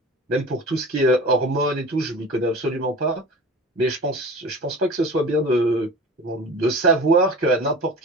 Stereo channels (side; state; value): both; normal; correlation 0.37